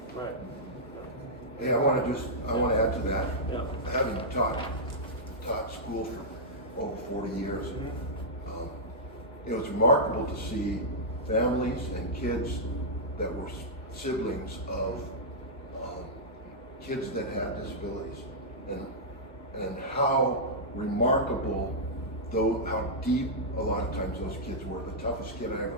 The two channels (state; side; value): normal; both; correlation -0.10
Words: right. Hey, I want to add to that. Yeah. Having taught school for over 40 years, it was remarkable to see families and kids that were siblings of kids that had disabilities, and how remarkable, though, how deep a lot of times those kids were. The toughest kid I ever